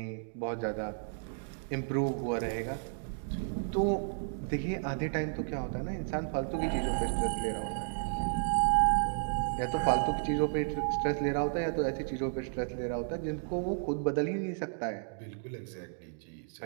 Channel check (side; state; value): left; silent; digital silence